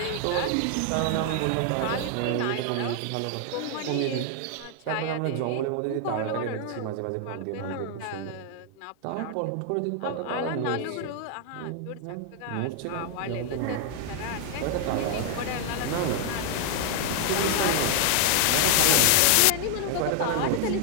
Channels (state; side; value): different; both; correlation 0.00